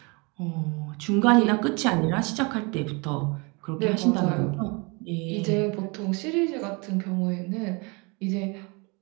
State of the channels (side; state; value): left; quieter; 29.6 dB